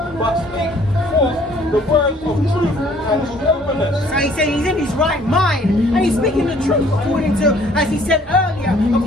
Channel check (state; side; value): normal; both; correlation 0.59